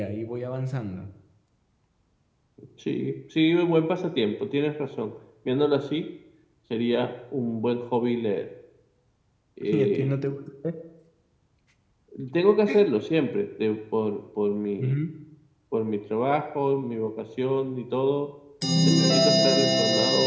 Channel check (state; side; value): identical; both; correlation 1.00